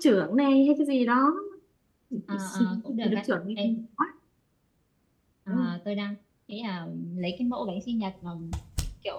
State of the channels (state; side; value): identical; both; correlation 1.00